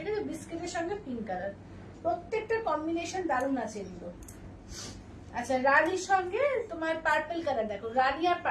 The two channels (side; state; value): both; identical; correlation 1.00